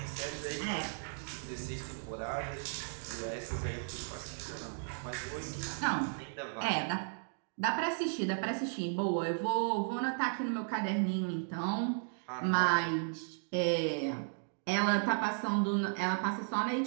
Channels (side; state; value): left; silent; digital silence